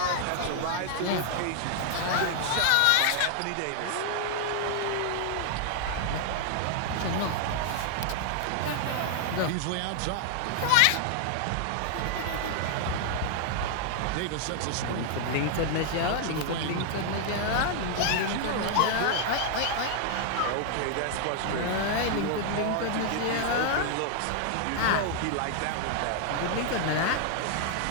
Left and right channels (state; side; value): different; both; correlation 0.00